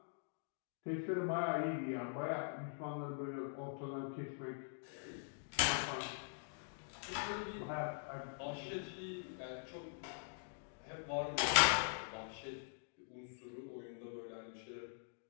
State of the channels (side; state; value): right; silent; digital silence